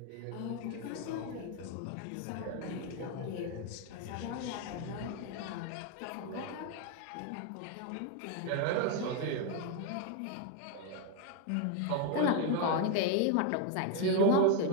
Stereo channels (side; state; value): both; different; correlation 0.01